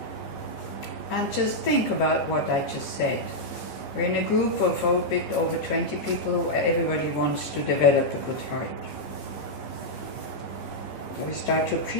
And just think about what I just said. We're in a group of a bit over 20 people who everybody wants to develop a good heart. So we start to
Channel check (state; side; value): late; right; 14 ms